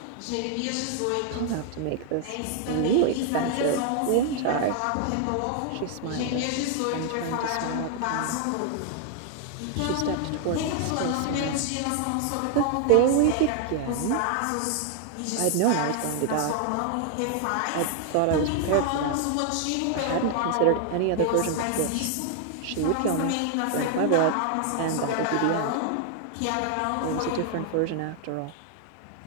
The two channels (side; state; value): both; different; correlation 0.00